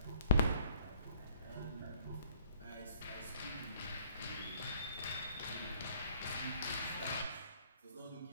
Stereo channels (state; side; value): inverted; both; correlation -0.60